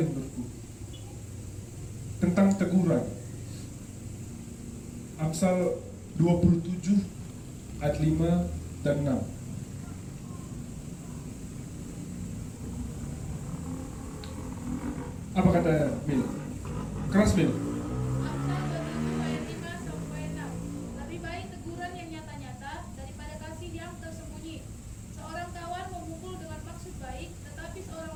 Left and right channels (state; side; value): identical; both; correlation 1.00